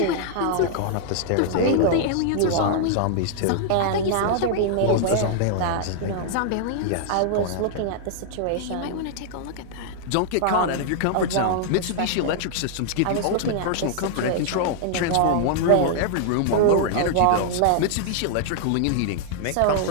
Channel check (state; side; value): different; both; correlation -0.01